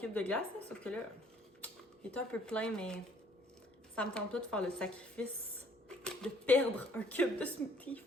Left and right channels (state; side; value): normal; both; correlation 0.60